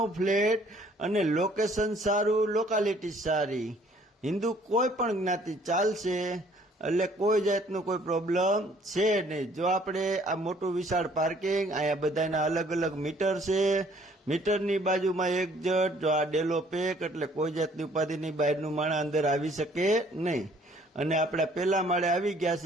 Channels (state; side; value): normal; both; correlation 0.59